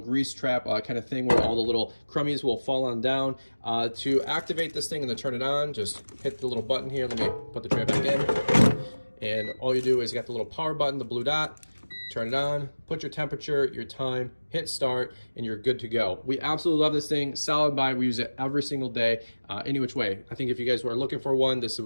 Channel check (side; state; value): both; inverted; correlation -1.00